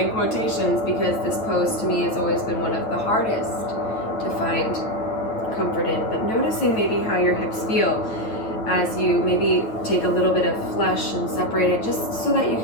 quotations because this pose to me has always been one of the hardest to find comfort in, but noticing maybe how your hips feel as you maybe take a little bit of flesh and separate it, just so that you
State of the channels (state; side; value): late; right; 9.1 ms